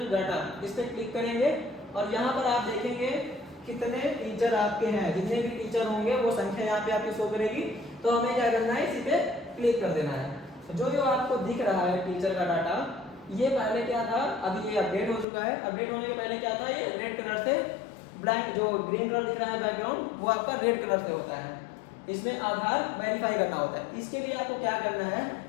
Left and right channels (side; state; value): right; drops out; at 15.2 s